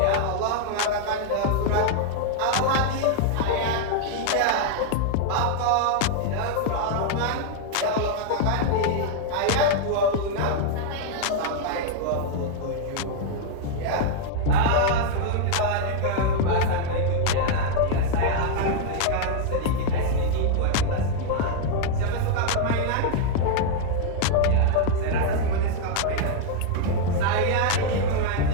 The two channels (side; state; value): both; different; correlation 0.00